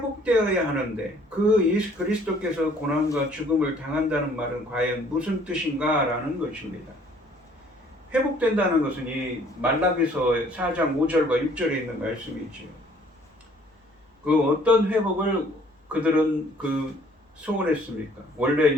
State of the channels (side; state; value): both; normal; correlation 0.58